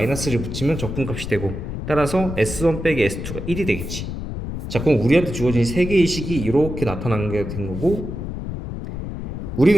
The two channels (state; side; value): noise; left; rumble, 6 dB below the sound